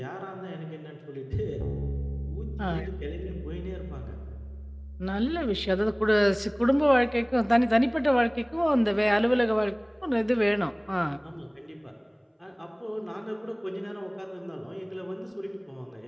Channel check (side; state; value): both; identical; correlation 1.00